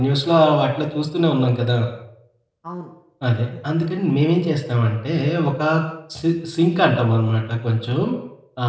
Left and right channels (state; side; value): identical; both; correlation 1.00